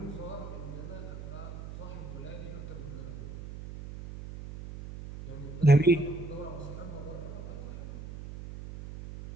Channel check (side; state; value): right; noise; hum, 10 dB below the sound